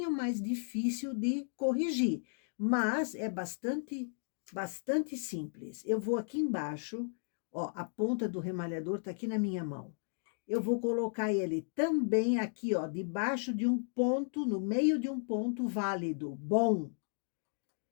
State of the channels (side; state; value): right; silent; digital silence